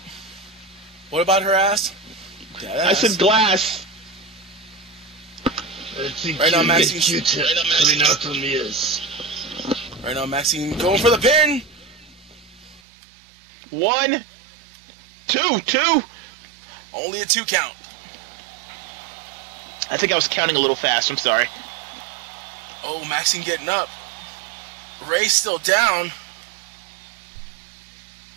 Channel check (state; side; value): drops out; left; at 12.8 s